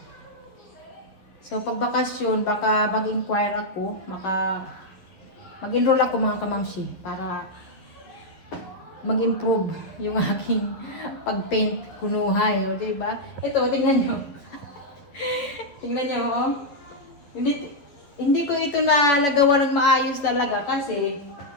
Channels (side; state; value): right; late; 11 ms